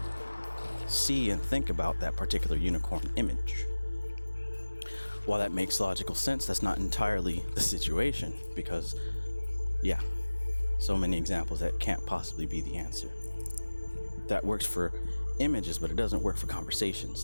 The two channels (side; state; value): both; inverted; correlation -1.00